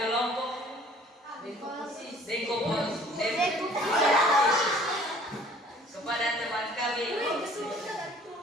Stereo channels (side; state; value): both; normal; correlation 0.53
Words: kelompok dekomposisi kepada teman kami.